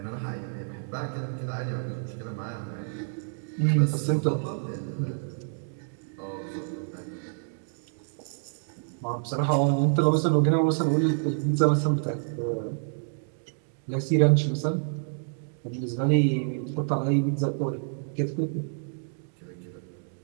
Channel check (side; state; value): left; silent; digital silence